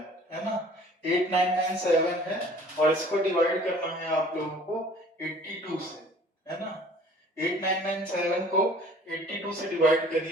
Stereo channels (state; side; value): normal; both; correlation 0.51